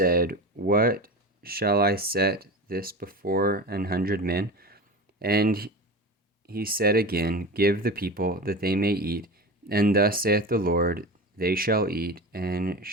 What shall I set this before 100 men? And he said again, Give the people, that they may eat. And thus saith the Lord, They shall eat, and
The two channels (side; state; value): both; normal; correlation 0.29